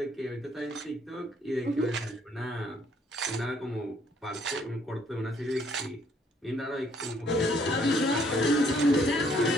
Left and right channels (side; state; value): both; normal; correlation 0.66